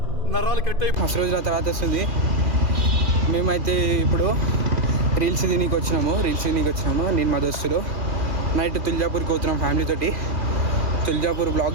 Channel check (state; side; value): late; left; 2.3 ms